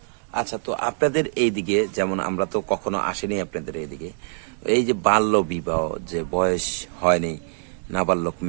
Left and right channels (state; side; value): silent; left; digital silence